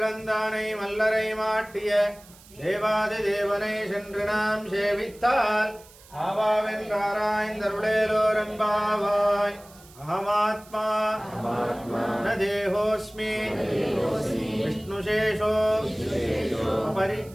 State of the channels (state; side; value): noise; right; hiss, 23 dB below the sound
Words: மல்லரை மாட்டிய தேவாதி தேவனை சென்று நாம் சேவித்தால் ஆவாவென்றாராய்ந்தருளேலோரம்பாவாய். அகமாத்மா ந தேகோஸ்மி விஷ்ணுசேஷோ